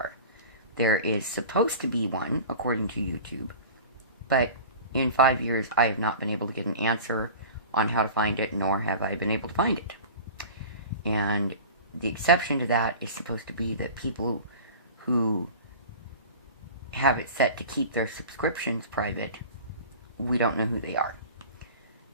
There is supposed to be one, according to YouTube, But in 5 years, I have not been able to get an answer on how to find it, nor have I been able to find it. And the exception to that is supposed to be that people who have it set to keep their subscriptions private, we don't know who they are.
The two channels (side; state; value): both; inverted; correlation -0.37